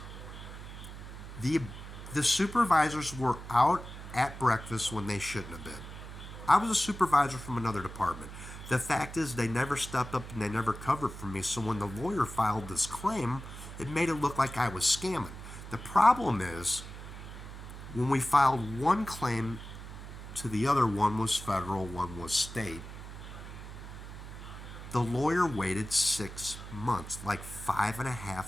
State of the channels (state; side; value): noise; right; hum, 12 dB below the sound